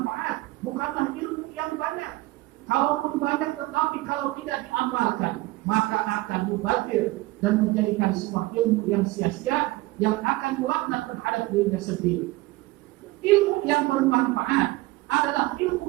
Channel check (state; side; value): quieter; left; 19.8 dB